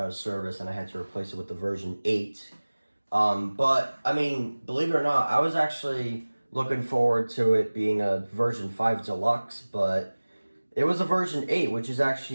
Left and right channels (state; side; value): inverted; both; correlation -1.00